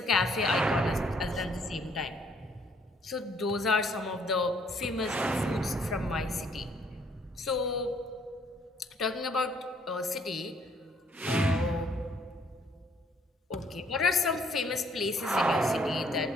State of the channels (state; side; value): normal; both; correlation 0.64